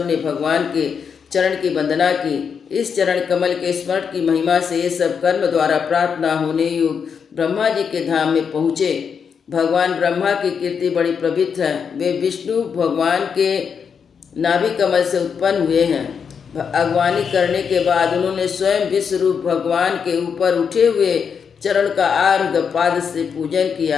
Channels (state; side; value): quieter; right; 6.6 dB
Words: ने भगवान के चरण की वंदना की। इस चरण कमल के स्मरण की महिमा से ये सब कर्म द्वारा प्राप्त न होने योग ब्रह्मा जी के धाम में पहुँचे। भगवान ब्रह्मा की कीर्ति बड़ी पवित्र है। वे विष्णु भगवान के नाभि कमल से उत्पन्न हुए हैं। अगवानी करने के बाद उन्होंने स्वयं विश्वरूप भगवान के ऊपर उठे हुए चरण का अर्घ पाद से पूजन